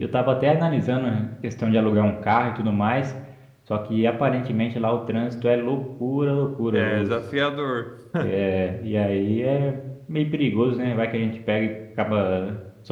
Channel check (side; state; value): both; identical; correlation 1.00